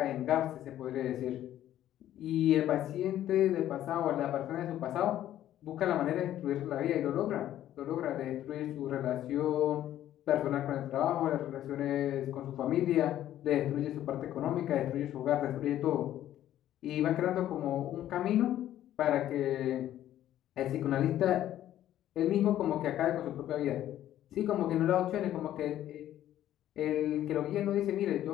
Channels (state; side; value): quieter; right; 12.4 dB